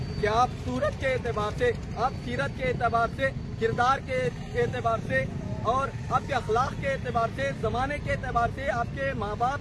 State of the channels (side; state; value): both; identical; correlation 1.00